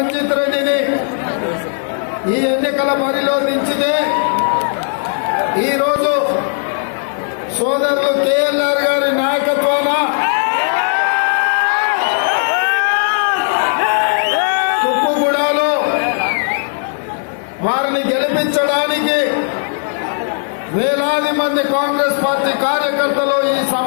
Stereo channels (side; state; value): right; silent; 59 dB below the other